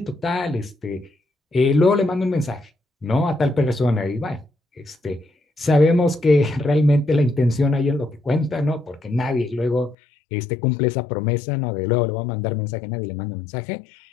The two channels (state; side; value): drops out; right; at 10.0 s